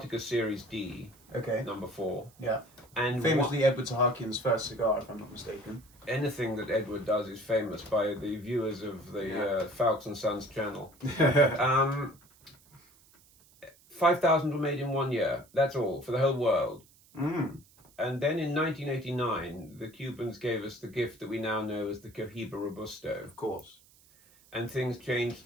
Series D. Okay. Number 4. Yeah. And famously Edward Sahakian's first cigar, if I'm not mistaken. Anything that Edward does is famous by the viewers of the Foulkes and Sons channel. 5,000 were made in 1 year. That's all, for the whole world. Mm. And then in 1989, the Cubans gave us the gift that we now know as the Cohiba Robusto. Of course. And things changed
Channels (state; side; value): noise; right; hiss, 28 dB below the sound